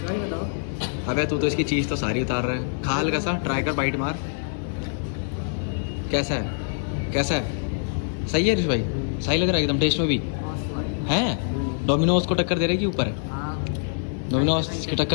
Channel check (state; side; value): silent; right; digital silence